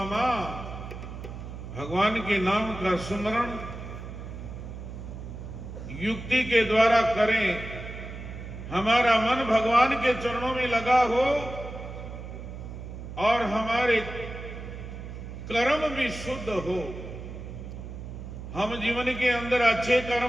भगवान के नाम का सुमरण युक्ति के द्वारा करें, हमारा मन भगवान के चरणों में लगा हो और हमारे कर्म भी शुद्ध हो। हम जीवन के अंदर अच्छे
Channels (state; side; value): noise; right; hum, 10 dB below the sound